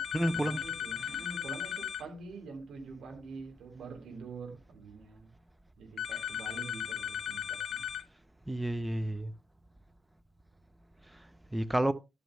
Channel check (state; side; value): normal; both; correlation 0.82